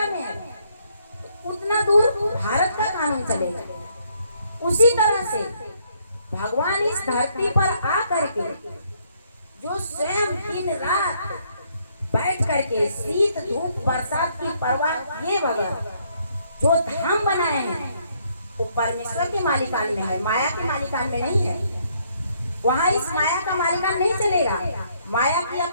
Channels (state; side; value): inverted; both; correlation -0.69